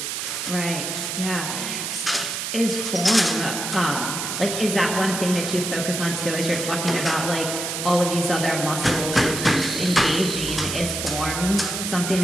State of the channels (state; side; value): noise; right; hiss, 4 dB below the sound